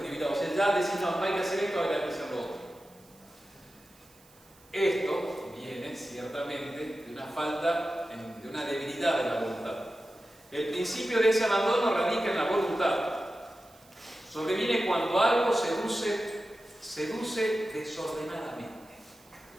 deliberados. O sea, ya decís, no hay que hacer esto, ahora hay que hacer lo otro. Esto viene ciertamente de una falta, de una debilidad de la voluntad. El principio de ese abandono radica en la voluntad. Sobreviene cuando algo seduce desordenadamente.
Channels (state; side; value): noise; right; hiss, 28 dB below the sound